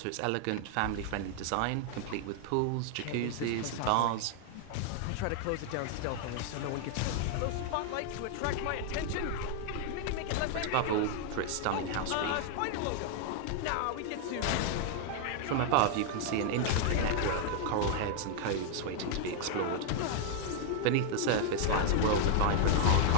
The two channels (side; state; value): both; different; correlation 0.00